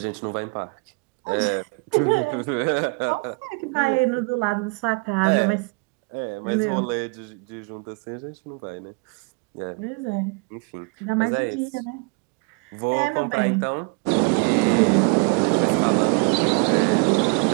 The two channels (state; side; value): quieter; left; 31.9 dB